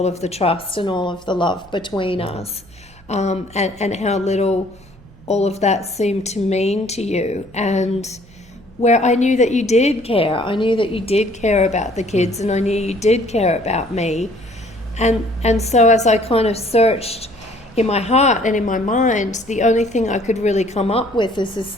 of the trust and all of the love between us, and how little all of that seemed to mean to you. And where I knew that you did care. I knew that you did care about the kids, and I knew you did care about me. And so as I kind of searched in my heart and in my mind, the only thing I could really come up with is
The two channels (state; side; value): normal; both; correlation 0.58